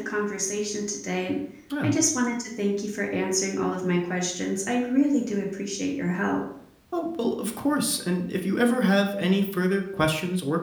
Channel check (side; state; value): both; identical; correlation 1.00